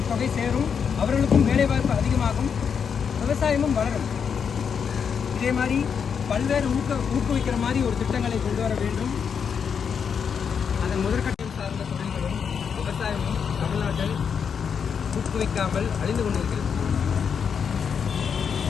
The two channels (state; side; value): quieter; right; 6.8 dB